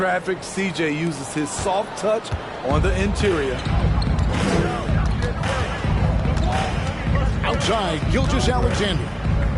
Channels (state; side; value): identical; both; correlation 1.00